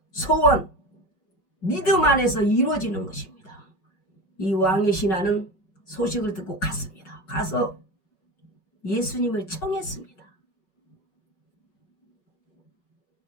소원, 믿음 안에서 이루어지는 것입니다. 이 왕의 신하는 소식을 듣고 갔습니다. 가서 예수님을 청했습니다.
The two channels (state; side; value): late; right; 5.4 ms